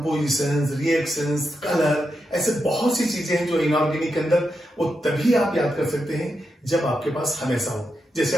रिएक्शंस, कलर, ऐसे बहुत सी चीजें हैं जो इनऑर्गेनिक के अंदर वो तभी आप याद कर सकते हैं जब आपके पास हमेशा हो। जैसे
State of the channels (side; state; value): both; normal; correlation 0.85